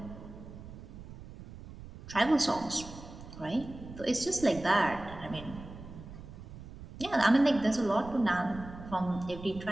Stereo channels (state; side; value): noise; right; rumble, 14 dB below the sound